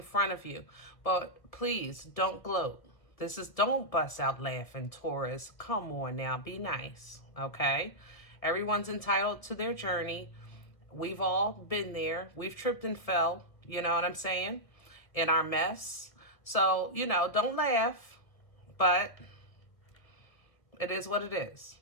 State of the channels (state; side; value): late; right; 1.6 ms